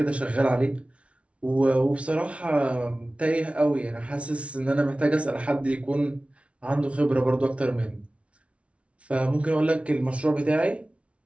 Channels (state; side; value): late; left; 0.062 ms